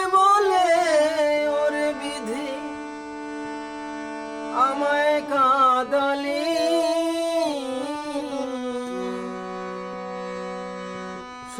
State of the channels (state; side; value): identical; both; correlation 1.00